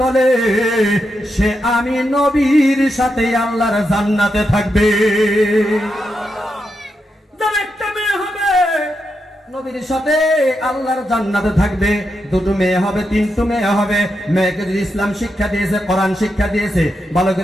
বলে সে আমি নবীর সাথে আল্লাহর জান্নাতে থাকবে। যার একটা মেয়ে হবে নবীর সাথে আল্লাহর জান্নাতে থাকবে। 2টো মেয়ে হবে, 3টো মেয়ে হবে। মেয়েকে যদি ইসলাম শিক্ষা দিয়েছে, কোরআন শিক্ষা দিয়েছে, ভালো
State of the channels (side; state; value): both; normal; correlation 0.85